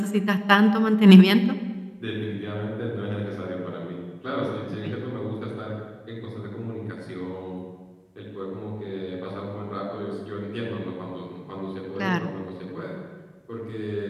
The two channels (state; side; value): identical; both; correlation 1.00